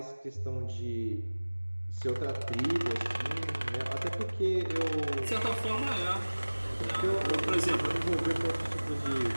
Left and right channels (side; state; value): both; inverted; correlation -1.00